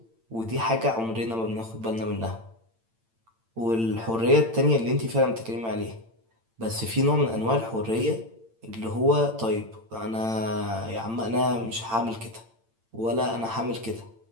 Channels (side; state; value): left; late; 8.9 ms